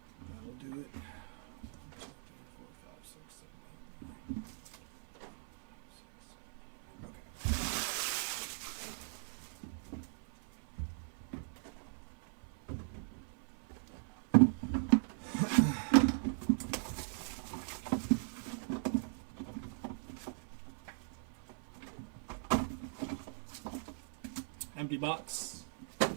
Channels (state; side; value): silent; left; 51 dB below the other